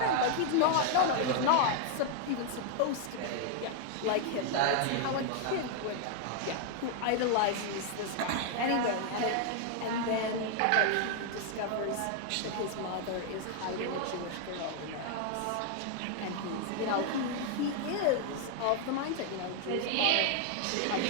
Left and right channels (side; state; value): both; different; correlation 0.00